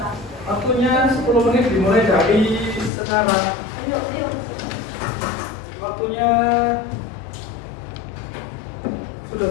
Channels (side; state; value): right; drops out; at 2.9 s